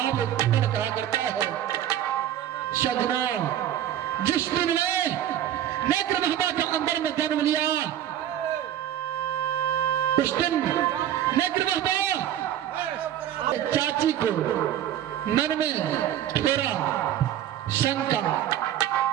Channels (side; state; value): left; quieter; 11.3 dB